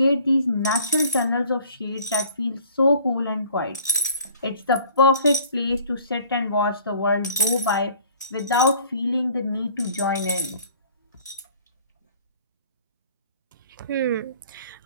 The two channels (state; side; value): inverted; both; correlation -0.53